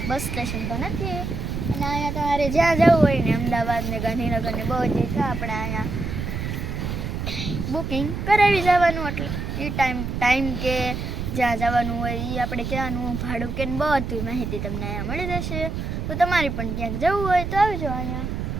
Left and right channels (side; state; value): right; noise; rumble, 4 dB below the sound